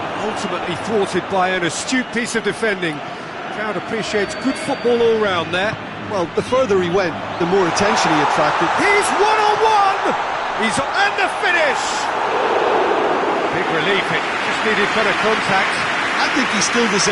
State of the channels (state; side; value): identical; both; correlation 1.00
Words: ultimately thwarted by an astute piece of defending. Crowd appreciates good football all round there. Well, the further he went, the more attention he attracted. He's one-on-one! He's and the finish! Big relief, it just needed better contact. I think he still